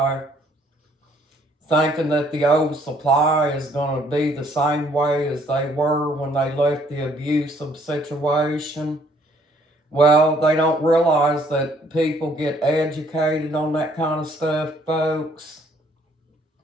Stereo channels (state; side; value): normal; both; correlation 0.63